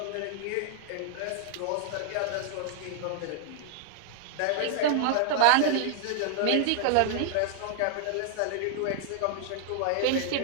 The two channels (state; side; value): different; both; correlation -0.01